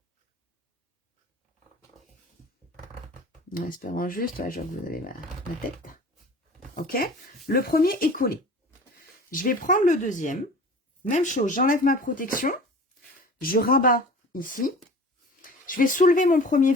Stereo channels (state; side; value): normal; both; correlation 0.41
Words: En espérant juste, ouais, je vois que vous avez ma tête. Ok, le premier est collé. Je vais prendre le deuxième. Même chose, j'enlève ma protection. Je rabats ici. Je vais soulever mon premier